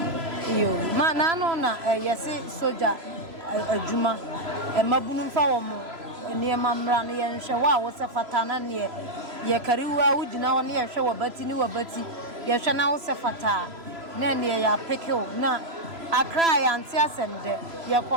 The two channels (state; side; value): late; left; 3.0 ms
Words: You, man, I know na yes, soldier, a juma, a mabunum for near Mamran, and Shawa was a fatana near Yakariwa, would you know near show a betty, new a betty, Yashana was a fata, Nanny, ya pickle, na, I cry and Tiasem,